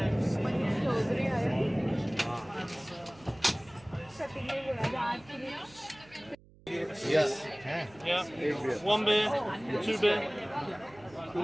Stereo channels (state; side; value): noise; right; hum, 25 dB below the sound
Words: Yes. Yeah. One beer, two beer.